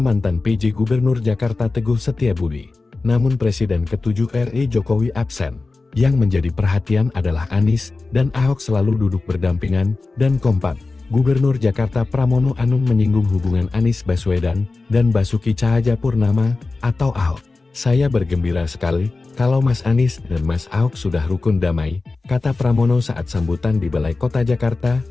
mantan PJ Gubernur Jakarta Teguh Setiabudi. Namun Presiden ke-7 RI Jokowi absen. Yang menjadi perhatian adalah Anies dan Ahok selalu duduk berdampingan dan kompak. Gubernur Jakarta Pramono Anung menyinggung hubungan Anies Baswedan dan Basuki Cahayapurnama atau Ahok. Saya bergembira sekali kalau Mas Anies dan Mas Ahok sudah rukun damai, kata Pramono saat sambutan di Balai Kota Jakarta,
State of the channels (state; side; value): quieter; right; 3.7 dB